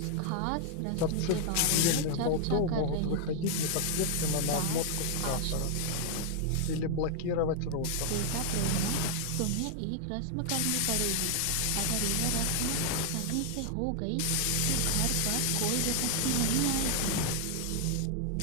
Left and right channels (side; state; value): both; different; correlation 0.00